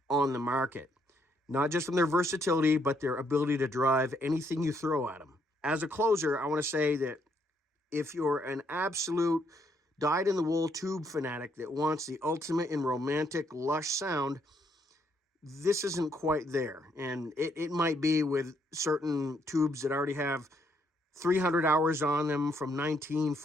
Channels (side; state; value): both; normal; correlation 0.72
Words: on the market, not just from their versatility, but their ability to drive anything you throw at them. As a closer, I want to say that if you're an absolute dyed-in-the-wool tube fanatic that wants the ultimate in romantic, lush sound, this isn't quite there. And it might be with certain tubes that already have 300 hours on them from